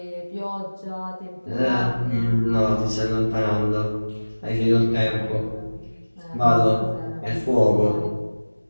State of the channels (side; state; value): both; inverted; correlation -1.00